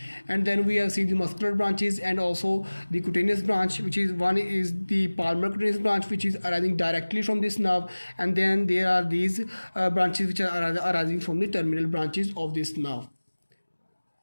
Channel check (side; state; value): both; inverted; correlation -1.00